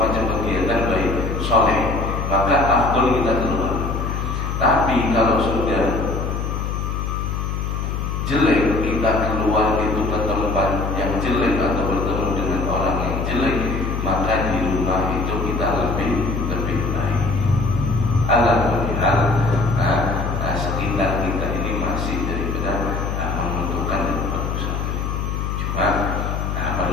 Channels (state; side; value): noise; left; hum, 2 dB below the sound